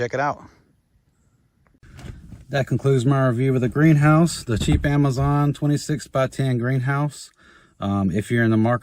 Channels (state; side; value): identical; both; correlation 1.00